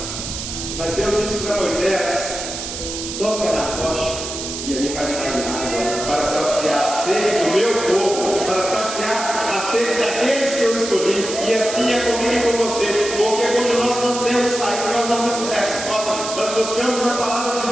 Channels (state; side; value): noise; right; hiss, 7 dB below the sound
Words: mas Deus disse para Moisés: toca na rocha e ali vai sair água, para saciar a sede do meu povo, para saciar a sede daqueles que eu escolhi. E assim é comigo e com você, porque quando nós não temos saída, nós não temos resposta, nós buscamos na palavra de